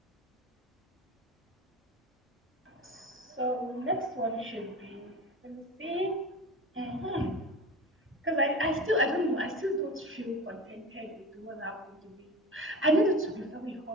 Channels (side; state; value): both; normal; correlation 0.32